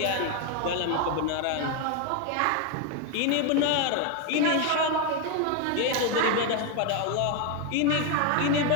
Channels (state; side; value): different; both; correlation 0.01